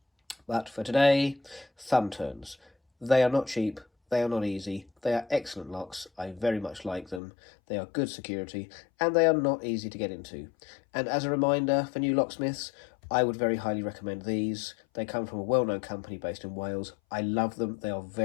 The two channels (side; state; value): right; drops out; at 7.2 s